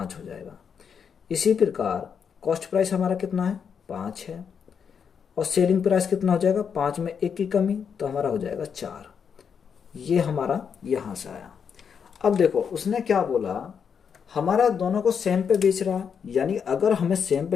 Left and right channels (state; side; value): quieter; right; 7.0 dB